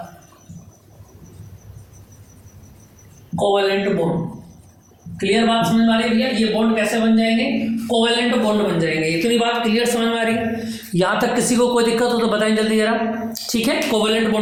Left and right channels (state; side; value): identical; both; correlation 1.00